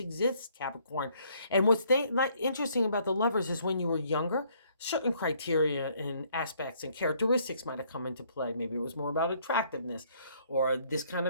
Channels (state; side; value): inverted; both; correlation -0.64